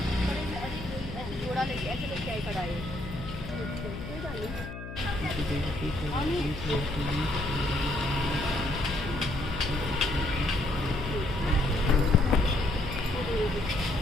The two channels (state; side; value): noise; left; hum, 10 dB below the sound